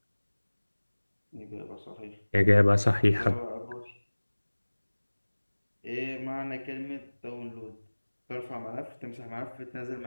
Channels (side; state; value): both; inverted; correlation -1.00